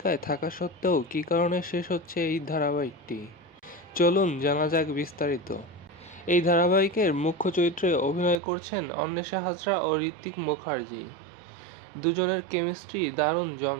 থাকা সত্ত্বেও কী কারণে শেষ হচ্ছে এই ধারাবাহিকটি, চলুন জানা যাক বিস্তারিত। এই ধারাবাহিকের মুখ্য চরিত্রে অভিনয় করছেন অন্বেষা হাজরা ও ঋত্বিক মুখার্জি। দুজনের কেমিস্ট্রি দারুণ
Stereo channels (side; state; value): left; drops out; at 8.4 s